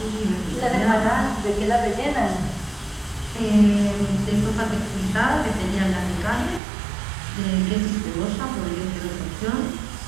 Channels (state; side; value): drops out; left; at 6.6 s